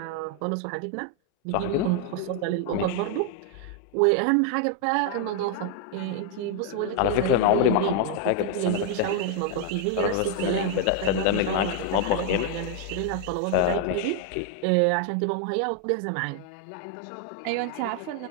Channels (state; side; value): different; both; correlation 0.00